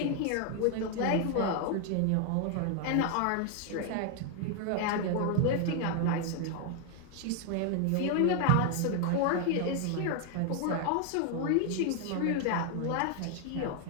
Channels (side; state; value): both; different; correlation 0.00